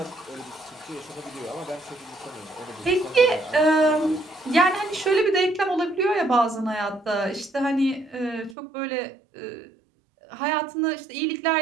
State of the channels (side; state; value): left; drops out; at 8.6 s